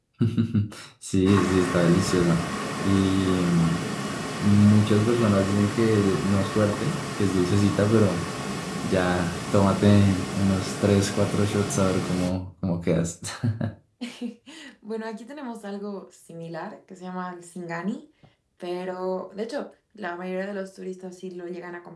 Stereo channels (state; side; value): identical; both; correlation 1.00